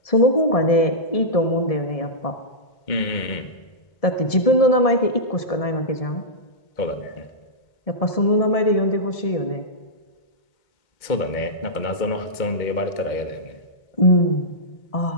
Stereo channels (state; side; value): late; right; 1.7 ms